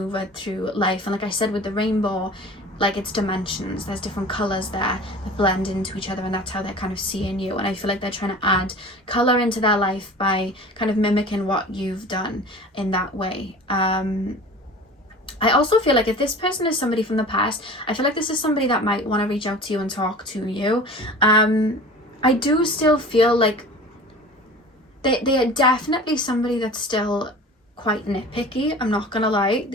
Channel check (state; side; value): normal; both; correlation 0.39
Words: through life. And like I said with the rainbow, like it's dimensions. There's different colors there that blend into each other, and that's how they're kind of seeing you. And I feel like they're trying to add color into their life by kind of mimicking what you've done in that way. I also feel like if this person is somebody from the past, I feel like this is somebody that might want to reach out to you and talk to you. I do still feel like they are definitely somebody that's still quite nitpicky. I'm not gonna lie.